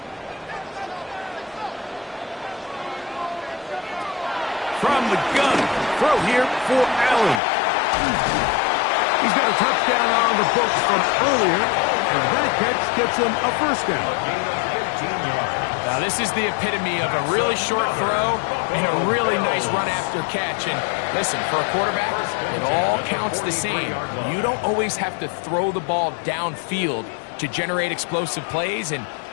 From the gun, throw here for Allen. He's got a touchdown on the books from earlier, and that catch gets him a first down. Now, this is the epitome of a really short throw and a really nice run after catch. And listen, for a quarterback, it all counts the same. You don't always have to throw the ball downfield to generate explosive plays, and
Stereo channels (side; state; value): right; drops out; at 7.4 s